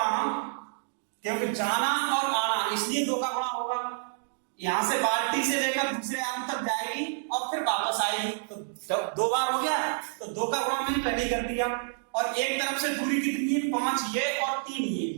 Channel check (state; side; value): silent; left; digital silence